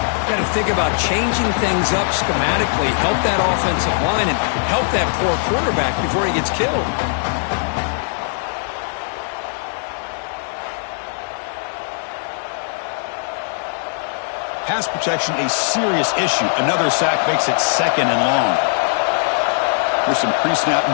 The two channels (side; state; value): right; silent; digital silence